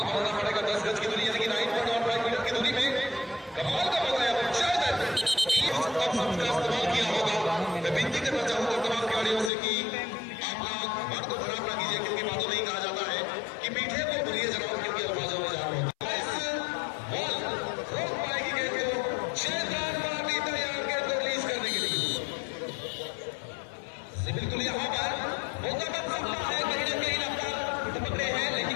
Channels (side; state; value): right; drops out; at 9.5 s